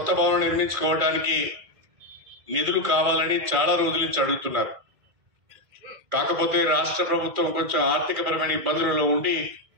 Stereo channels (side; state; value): left; late; 2.4 ms